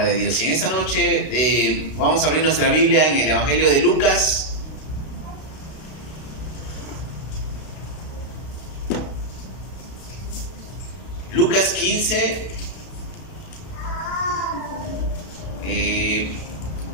de Dios. Y en esta noche vamos a abrir nuestra Biblia en el Evangelio de Lucas. Lucas 15,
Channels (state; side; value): late; right; 32 ms